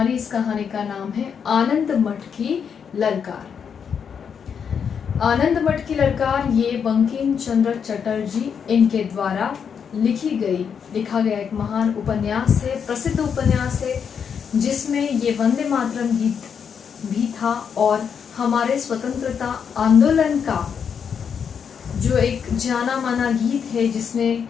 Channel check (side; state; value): right; quieter; 7.1 dB